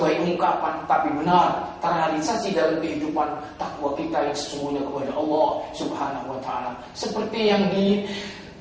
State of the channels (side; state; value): both; identical; correlation 1.00